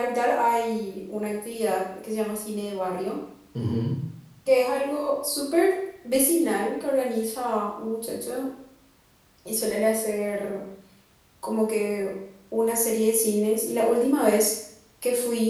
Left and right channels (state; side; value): identical; both; correlation 1.00